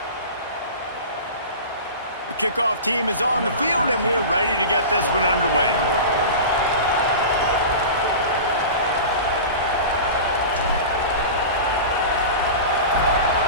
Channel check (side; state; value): both; inverted; correlation -0.32